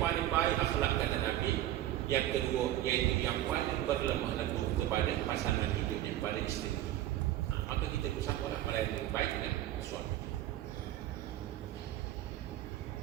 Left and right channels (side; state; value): left; quieter; 13.6 dB